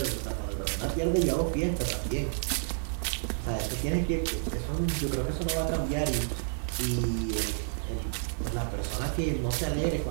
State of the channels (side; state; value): left; silent; digital silence